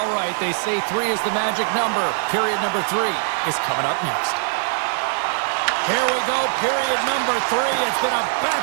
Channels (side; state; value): left; silent; digital silence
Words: right, they say 3 is the magic number. Period number 3 is coming up next. Here we go, period number 3. It's been a